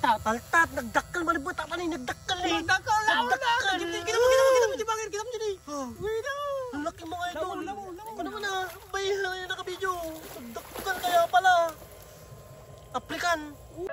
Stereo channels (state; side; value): identical; both; correlation 1.00